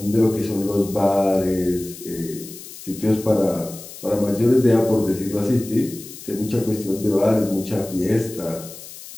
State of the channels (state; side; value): noise; left; hiss, 15 dB below the sound